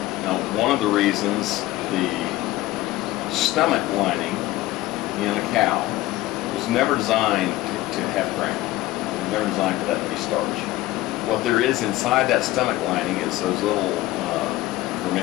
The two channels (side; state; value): right; quieter; 16.9 dB